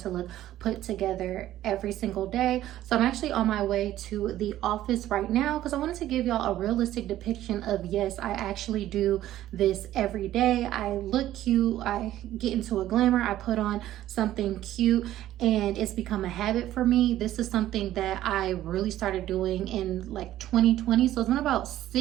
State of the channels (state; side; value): quieter; left; 13.5 dB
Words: to look put together every single day. So I'm actually on my way to the office right now because I wanted to give y'all a realistic depiction of, yes, I actually do this every day. I look cute, I get into a glamour, I put on something cute, and it's become a habit for me. This is something that I really started doing in like 2020, so it's been about